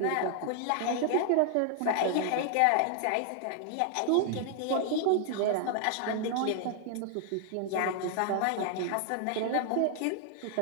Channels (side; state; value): both; different; correlation 0.00